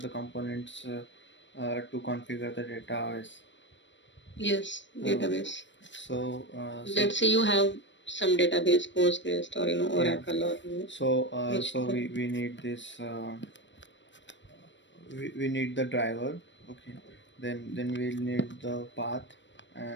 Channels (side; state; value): right; late; 0.53 ms